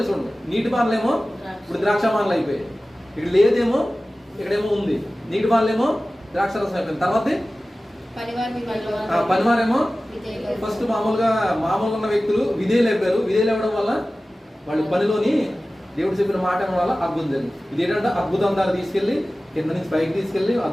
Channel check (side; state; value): both; normal; correlation 0.96